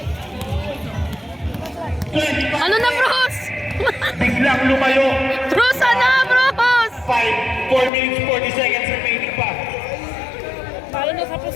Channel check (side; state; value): right; drops out; at 7.9 s